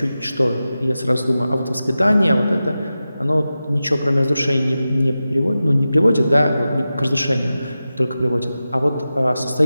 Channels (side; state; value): both; inverted; correlation -0.93